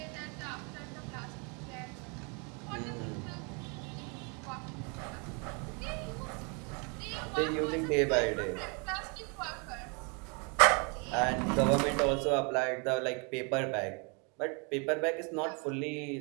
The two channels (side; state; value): left; quieter; 33.9 dB